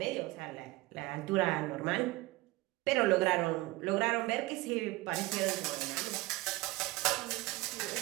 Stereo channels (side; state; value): left; quieter; 20.0 dB